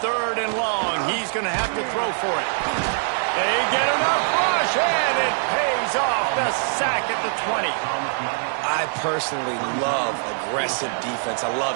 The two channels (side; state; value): left; silent; digital silence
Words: 3rd and long, he's going to have to throw for it. They get enough rush, and it pays off. The sack at the 20. I personally love aggressive defense. I